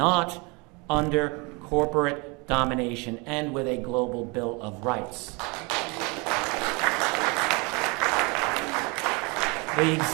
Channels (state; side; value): quieter; left; 29.1 dB